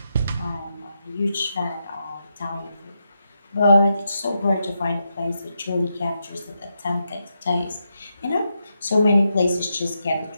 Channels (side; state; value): both; inverted; correlation -0.84